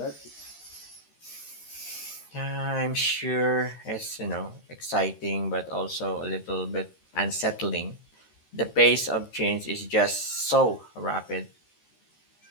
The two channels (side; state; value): right; late; 13 ms